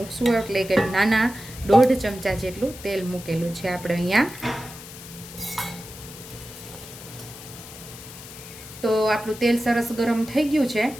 એટલે કે નાના 1.5 ચમચા જેટલું તેલ મૂકેલું છે આપણે અહીંયા. તો આપણું તેલ સરસ ગરમ થઈ ગયું છે.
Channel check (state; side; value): noise; left; hiss, 15 dB below the sound